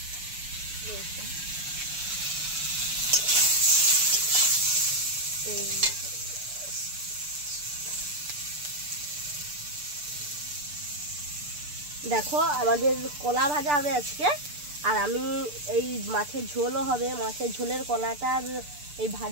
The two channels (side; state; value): left; late; 6.8 ms